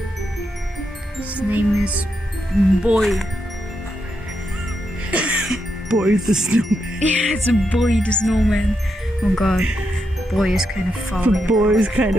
is Boy. Boy the snowman. Yeah, it's a Boy the snowman. Oh god, Boy is kind of falling. The boy is kind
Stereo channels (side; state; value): both; normal; correlation 0.83